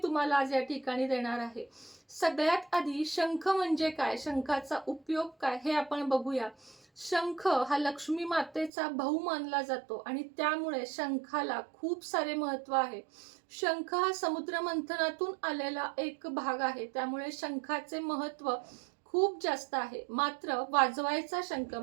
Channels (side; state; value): left; drops out; at 8.7 s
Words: तुम्हाला आज या ठिकाणी देणार आहे. सगळ्यात आधी शंख म्हणजे काय, शंखाचा उपयोग काय हे आपण बघूया. शंख हा लक्ष्मी मातेचा भाऊ मानला जातो आणि त्यामुळे शंखाला खूप सारे महत्त्व आहे. शंख हा समुद्र मंथनातून आलेला एक भाग आहे, त्यामुळे शंखाचे महत्त्व खूप जास्त आहे. मात्र वाजवायचा शंख